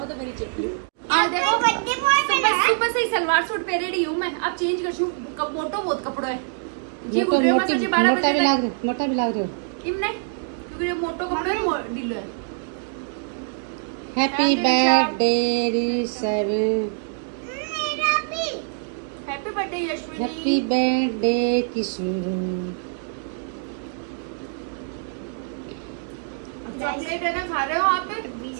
तो मेरी चिट्ठी। आज देखो बर्थडे बॉय सुबह सुबह से ही सलवार सूट पहने रही हूँ मैं, अब चेंज कर छू, मोटो बहुत कपड़ो है जी, गुड रहे मत 12 बजे तक मोटा भी लाग रहे हो। इम नहीं क्योंकि ये मोटो कपड़ो है ढीलो है। हैप्पी बर्थडे ऋषभ, मेरा भी। Happy birthday Yashvini. Happy birthday Kishore. Chocolate है ना खा रहे हो आप,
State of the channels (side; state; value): left; silent; digital silence